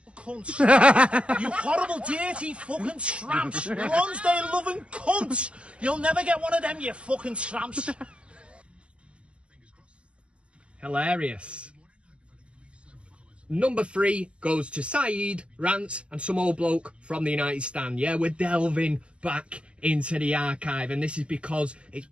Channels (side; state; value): left; late; 0.054 ms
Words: Cunts. You horrible, dirty fucking tramps. Lonsdale loving cunts. You'll never get one of them, you fucking tramps. Hilarious. Number 3 goes to Saeed, Rants, and some old bloke from the United Stand. Yeah, we're delving back into the archive, and this is because it's